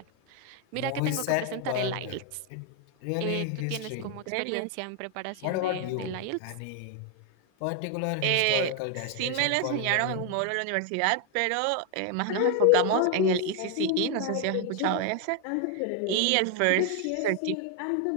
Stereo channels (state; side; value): different; both; correlation 0.00